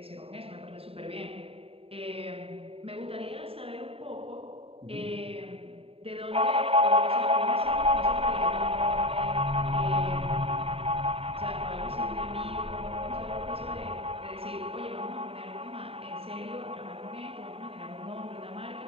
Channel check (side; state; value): left; late; 0.27 ms